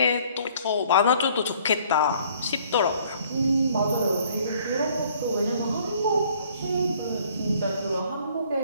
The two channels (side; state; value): both; inverted; correlation -0.59